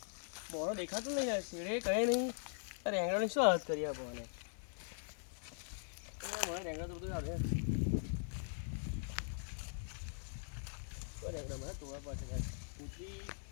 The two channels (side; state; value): right; silent; 50 dB below the other